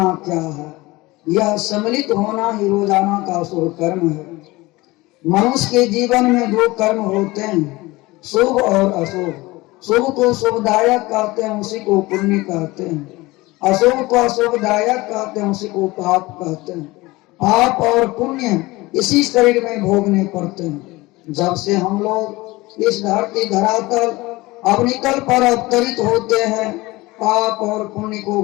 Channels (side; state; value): right; quieter; 20.9 dB